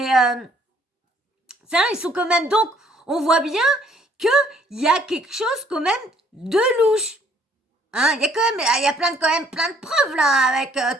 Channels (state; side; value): normal; both; correlation 0.62